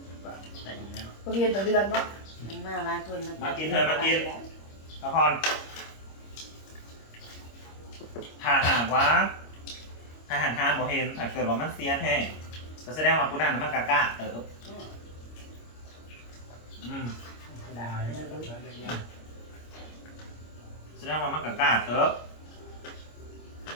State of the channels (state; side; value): late; right; 26 ms